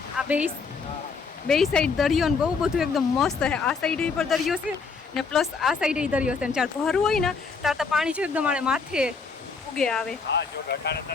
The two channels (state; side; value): quieter; right; 4.9 dB